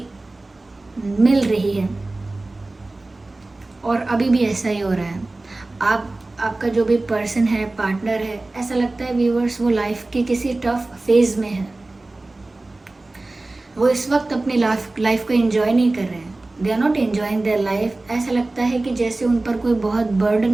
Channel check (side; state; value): left; quieter; 3.0 dB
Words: मिल रही है। और अभी भी ऐसा ही हो रहा है। आपका जो भी पर्सन है, पार्टनर है, ऐसा लगता है व्यूअर्स वो लाइफ के किसी टफ फेज में है। वो इस वक्त अपनी लाइफ को एंजॉय नहीं कर रहे हैं। They are not enjoying their life. ऐसा लगता है कि जैसे उन पर कोई बहुत